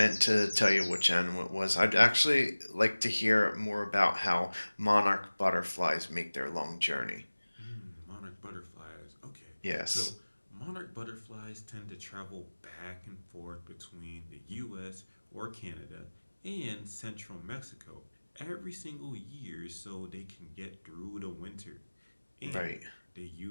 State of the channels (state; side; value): inverted; both; correlation -1.00